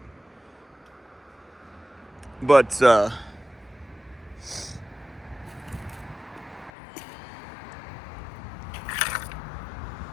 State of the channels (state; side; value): drops out; right; at 6.7 s